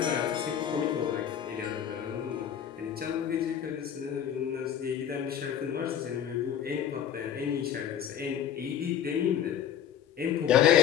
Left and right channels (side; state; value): right; quieter; 9.4 dB